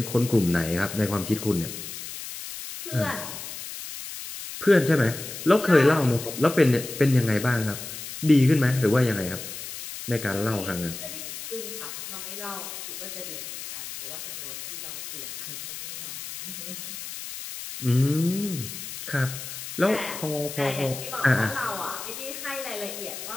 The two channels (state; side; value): noise; left; hiss, 9 dB below the sound